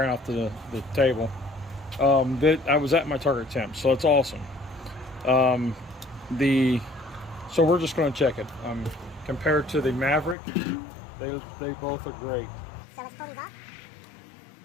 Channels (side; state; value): right; drops out; at 10.4 s